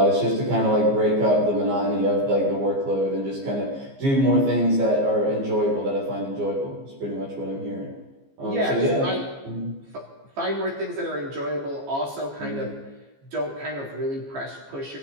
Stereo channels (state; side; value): late; left; 15 ms